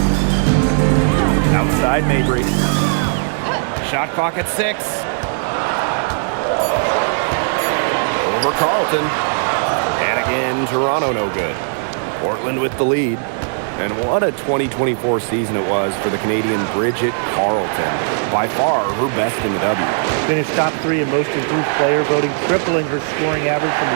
Outside Mabry. Shot clock at 6. Over Carlton. And again, Toronto no good. Portland with the lead. And what a 2024 season it was for the Canadian Bridget Carlton. By far her best in the W. Finished top 3 in most improved player voting, tripling her scoring average from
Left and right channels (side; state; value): left; silent; digital silence